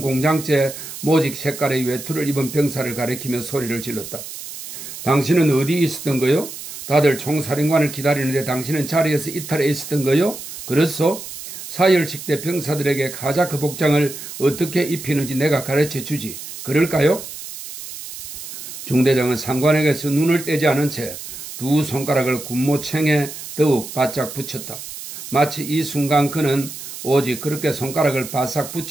공장제 모직 색깔의 외투를 입은 병사를 가리키며 소리를 질렀다. 당신은 어디 있었던 거요? 다들 총사령관을 기다리는데 당신은 자리에서 이탈해 있었던 거요? 그렇소? 사열식대 병사들에게 카자크 복장을 어떻게 입히는지 내가 가르쳐 주지. 그럴까요? 중대장은 상관에게서 눈을 떼지 않은 채 두 손가락을 군모챙에 더욱 바짝 붙였다. 마치 이 순간 그는 오직 그렇게 손가락을 바싹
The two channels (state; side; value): noise; right; hiss, 11 dB below the sound